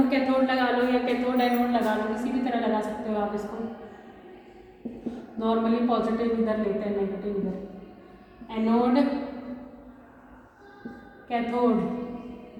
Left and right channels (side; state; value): both; identical; correlation 1.00